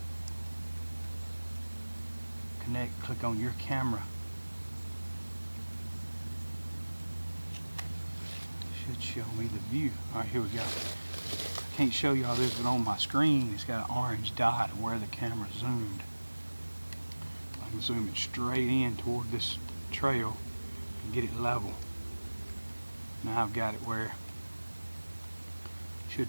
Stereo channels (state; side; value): inverted; both; correlation -1.00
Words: Connect. Click on your camera. should show me the view. All right, here we go. I can't show y'all this, but on my screen, it's got an orange dot of where the camera zoomed. I can zoom it straight in toward this trail and get it level. Now I've got it where it